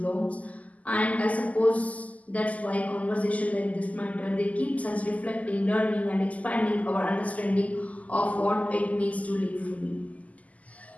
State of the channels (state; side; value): late; right; 0.073 ms